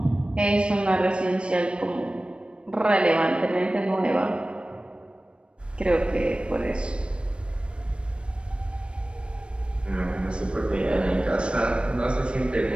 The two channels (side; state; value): left; late; 0.057 ms